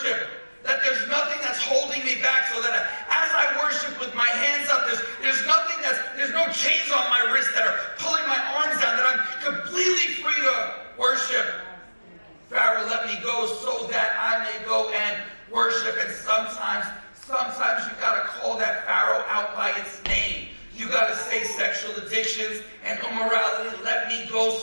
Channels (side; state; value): both; inverted; correlation -1.00